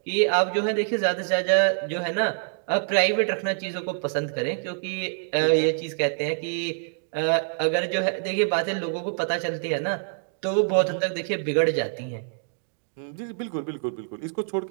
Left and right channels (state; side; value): silent; left; digital silence